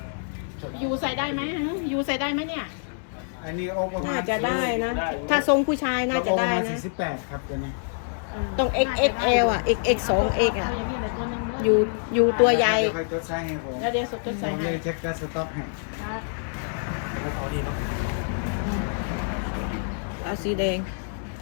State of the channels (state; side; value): silent; right; 61 dB below the other